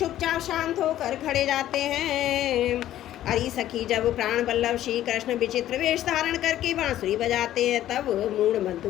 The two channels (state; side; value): quieter; right; 12.9 dB